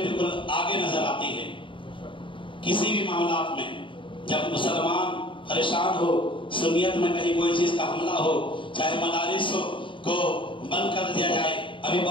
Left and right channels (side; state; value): right; late; 0.24 ms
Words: بالکل آگے نظر آتی ہے۔ کسی بھی معاملات میں جب مسلمان پریشان ہو، سنیت میں کہیں کوئی چیز کا حملہ ہو، چاہے مدارس کو بند کر دیا جائے، ابھی